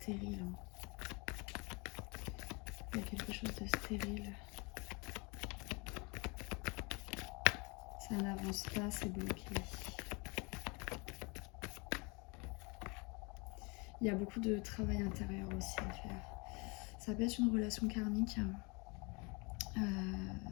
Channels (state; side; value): quieter; right; 29.5 dB